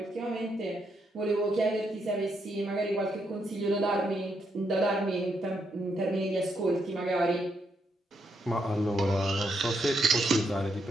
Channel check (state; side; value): normal; both; correlation 0.78